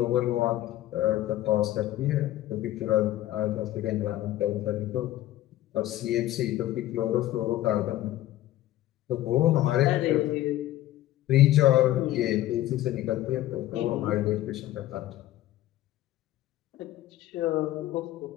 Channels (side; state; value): right; quieter; 14.6 dB